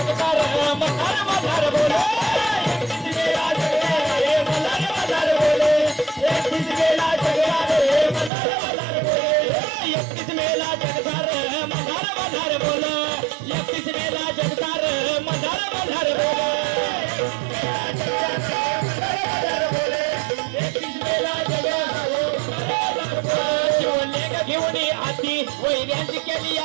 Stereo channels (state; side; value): drops out; left; at 8.3 s